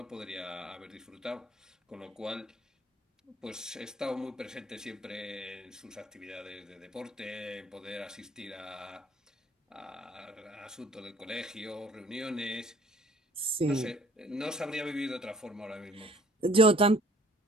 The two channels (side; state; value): both; normal; correlation 0.58